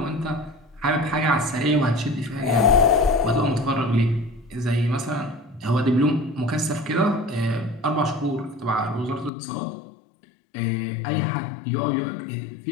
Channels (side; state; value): right; drops out; at 9.3 s